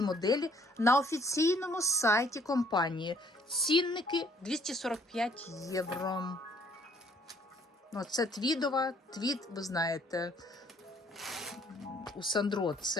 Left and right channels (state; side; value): normal; both; correlation 0.62